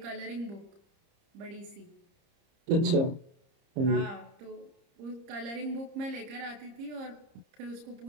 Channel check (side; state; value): left; late; 30 ms